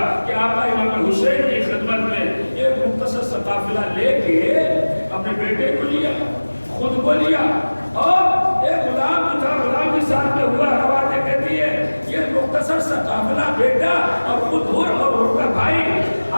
کہ آقا امام حسین کی خدمت میں ایک مختصر سا قافلہ لے کے اپنے بیٹے کو لیا, خود کو لیا, اور ایک غلام جو تھا, غلام بھی ساتھ میں ہوا. روایتیں کہتی ہے یہ مختصر سا قافلہ بیٹا اور خود اور ان کا بھائی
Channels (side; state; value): both; inverted; correlation -1.00